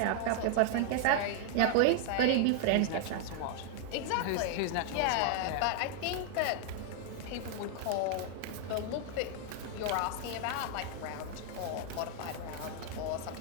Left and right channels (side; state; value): both; different; correlation 0.00